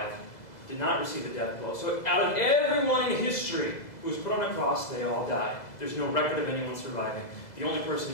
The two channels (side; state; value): right; late; 2.0 ms